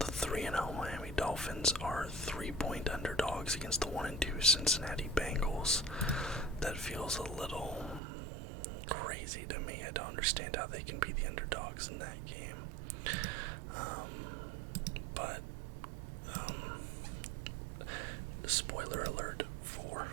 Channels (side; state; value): left; drops out; at 8.0 s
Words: 3-0 Miami Dolphins are 3-point underdogs against the 1-2 Cincinnati Bengals. That feels a little crazy to me. I don't understand how they can be the underdogs in that game. But spoiler alert for